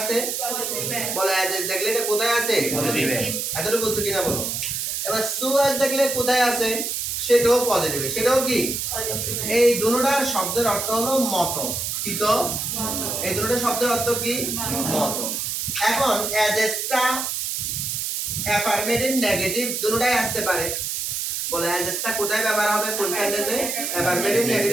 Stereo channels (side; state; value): right; noise; hiss, 2 dB below the sound